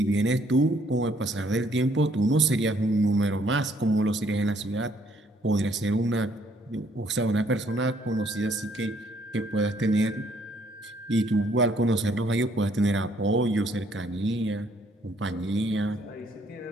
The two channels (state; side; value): normal; both; correlation 0.66